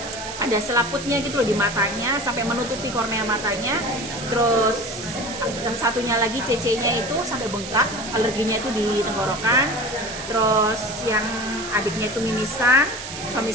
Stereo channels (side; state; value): right; noise; hiss, 9 dB below the sound